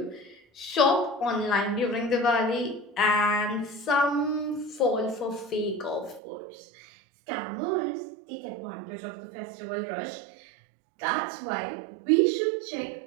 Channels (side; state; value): left; drops out; at 6.2 s